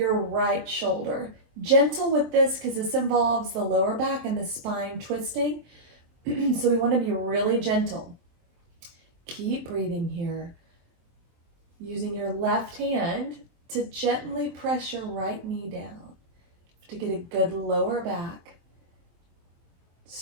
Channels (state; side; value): late; left; 23 ms